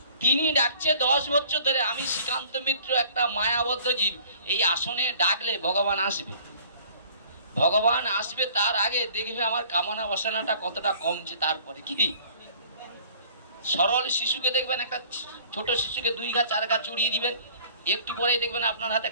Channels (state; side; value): inverted; both; correlation -0.52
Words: তিনি ডাকছে 10 বছর ধরে। আমি শ্রীকান্ত মিত্র একটা মায়াবদ্ধ জীব, এই আসনে ডাকলে ভগবান আসবে। ভগবান আসবে তার আগে দেখবে আমার কামনা বাসনাটা কতটা কমছে। তারপরে কি সরল শিশুকে দেখবেন, একটা ছোট শিশুকে 2 ঘা 4 ঘা চড়িয়ে দিবেন, একটু পরেই দেখবেন আপনার হাতে